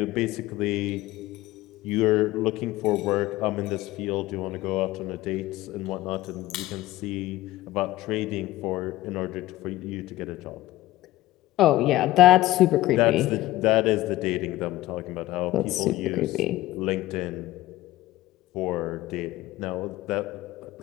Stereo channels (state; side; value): quieter; right; 16.8 dB